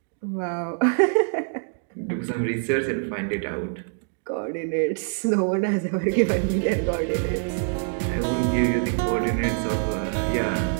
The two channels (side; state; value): left; silent; 62 dB below the other